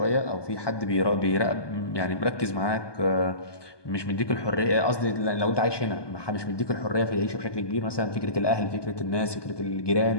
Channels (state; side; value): late; right; 1.2 ms